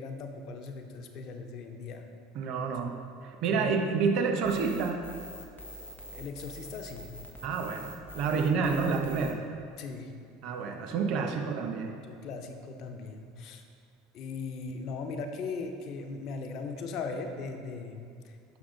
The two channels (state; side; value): quieter; left; 3.2 dB